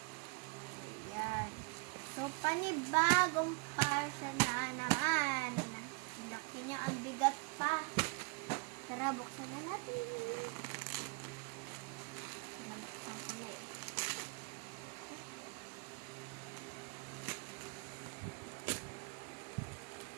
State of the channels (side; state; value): left; quieter; 30.7 dB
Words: Ayan. So, panibagong parcel na naman. Laki niya, ang bigat pa. Tara, buksan na natin. Buksan ko na eh.